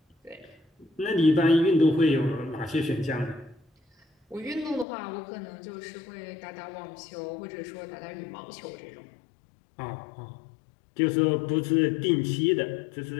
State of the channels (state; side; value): drops out; right; at 4.9 s